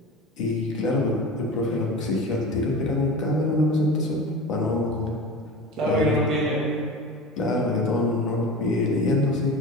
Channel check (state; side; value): normal; both; correlation 0.32